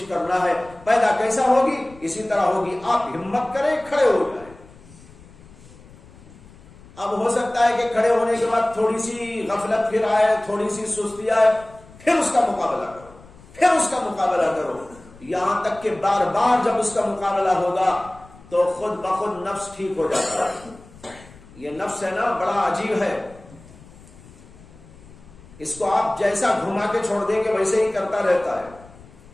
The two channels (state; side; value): noise; left; rumble, 22 dB below the sound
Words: کرنا ہے۔ پیدا کیسا ہوگی؟ اسی طرح ہوگی، آپ ہمت کریں، کھڑے ہو جائیں۔ اب ہو سکتا ہے کہ کھڑے ہونے کے بعد تھوڑی سی غفلت پھر آئے، تھوڑی سی سستی آئے، پھر اس کا مقابلہ کرو، پھر اس کا مقابلہ کرو، یہاں تک کہ بار بار جب اس کا مقابلہ ہوگا تو خود بخود نفس ٹھیک ہو جاتا ہے۔ یہ نفس ہے نا، بڑا عجیب ہے، اس کو آپ جیسا گھما کے چھوڑ دیں گے ویسے ہی کرتا رہتا ہے۔